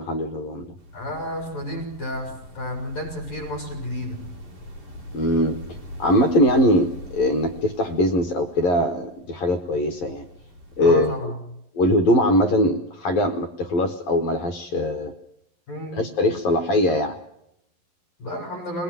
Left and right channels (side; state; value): right; late; 11 ms